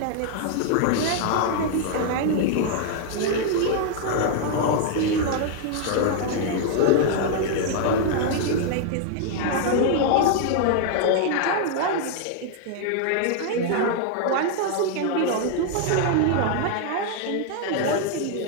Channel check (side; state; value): both; different; correlation 0.00